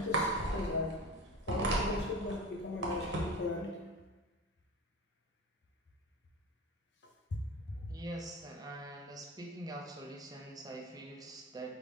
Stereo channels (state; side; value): normal; both; correlation 0.31